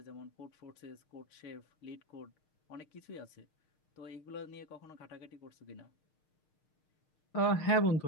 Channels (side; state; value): right; late; 6.5 ms